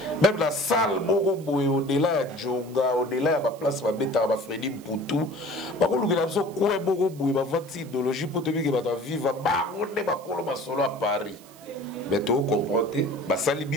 Même la salle, au-delà de Djonga, au-delà de la place, de Freddy Mpoutou, il y a une idéologie pour te dire que tu vas vivre à Paris. Mais tu comprends, Sali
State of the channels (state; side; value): noise; right; hiss, 23 dB below the sound